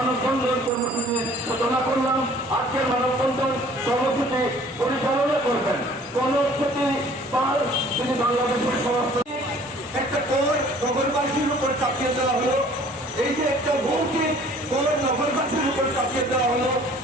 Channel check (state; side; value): normal; both; correlation 0.53